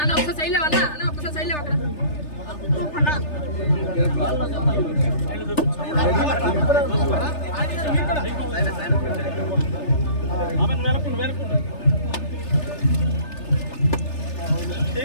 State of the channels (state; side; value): late; right; 3.3 ms